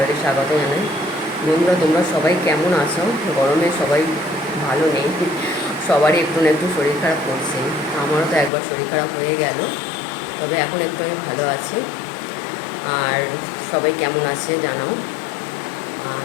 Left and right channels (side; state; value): right; drops out; at 8.5 s